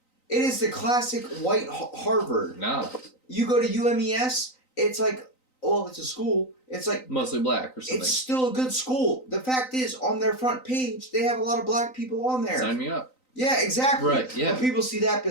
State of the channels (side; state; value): right; late; 3.9 ms